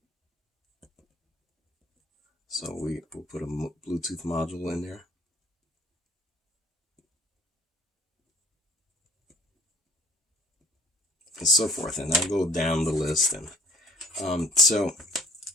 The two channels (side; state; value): both; normal; correlation 0.50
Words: So we'll put a Bluetooth module in there. And so forth. And I'll go down the list. And so